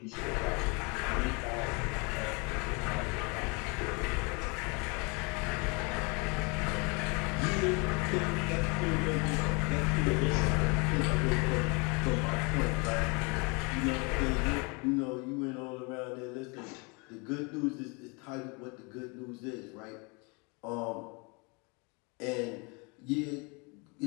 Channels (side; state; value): right; quieter; 30.8 dB